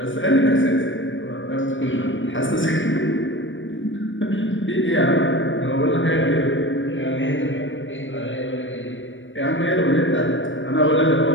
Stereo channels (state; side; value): late; right; 0.56 ms